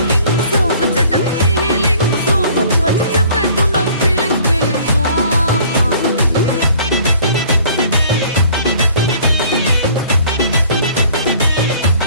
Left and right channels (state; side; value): inverted; both; correlation -0.54